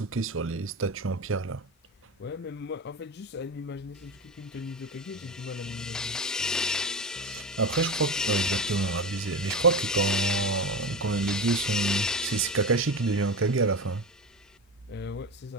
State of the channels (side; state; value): both; normal; correlation 0.24